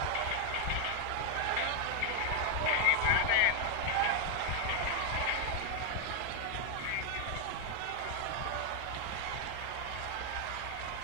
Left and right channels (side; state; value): both; different; correlation 0.00